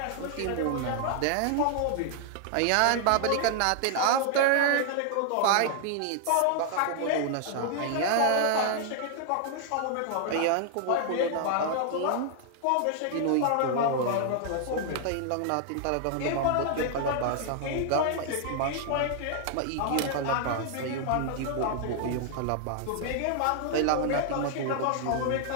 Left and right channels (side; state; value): both; different; correlation 0.00